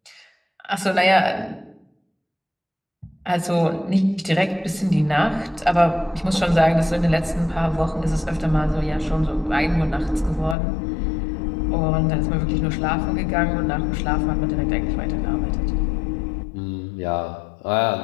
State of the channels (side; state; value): right; drops out; at 10.6 s